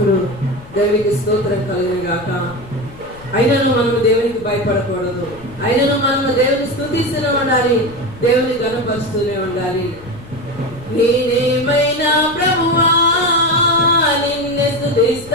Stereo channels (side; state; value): left; noise; rumble, 19 dB below the sound